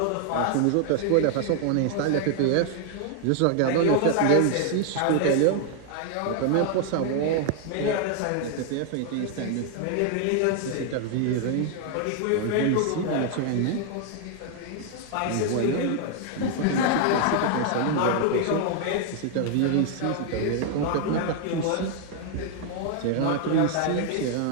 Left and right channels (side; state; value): both; different; correlation 0.00